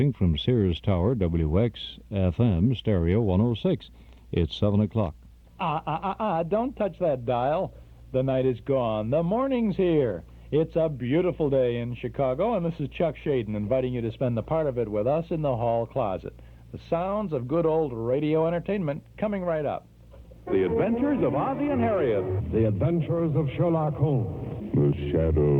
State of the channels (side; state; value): both; identical; correlation 1.00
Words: from Sears Tower, WXFM, Stereo 106. It's 7 o'clock. Don't touch that dial. The night is gone. The morning's here. It's a beautiful day in Chicago, and this is Chuck Shaden inviting you to spend the part of it with us in the hall closet. The sounds of good old radio entertainment coming right up. The Adventures of Ozzie and Harriet. The Adventures of Sherlock Holmes. The